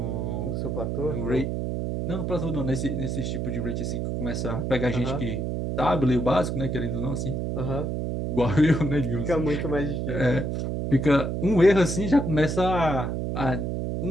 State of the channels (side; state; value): right; noise; hum, 2 dB below the sound